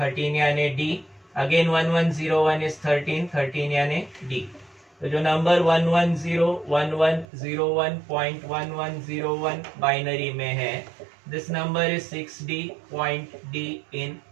यानी D, अगेन 1101 is 13, 13 यानी D। तो जो नंबर 1101101.1101 बाइनरी में है, this number is 6D.D in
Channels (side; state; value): left; drops out; at 7.2 s